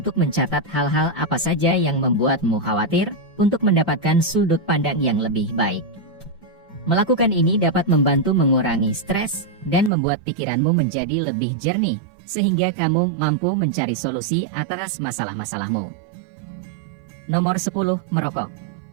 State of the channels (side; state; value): left; drops out; at 9.9 s